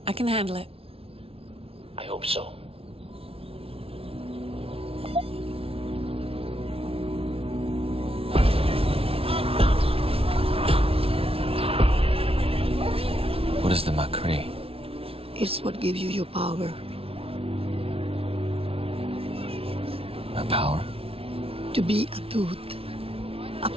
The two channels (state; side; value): late; left; 0.27 ms